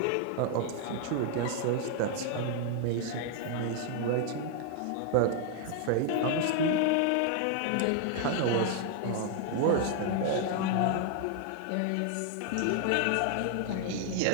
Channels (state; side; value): different; both; correlation 0.00